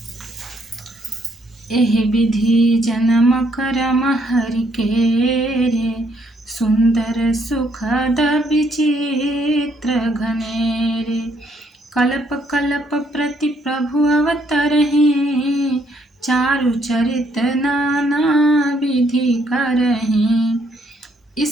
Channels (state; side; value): normal; both; correlation 0.70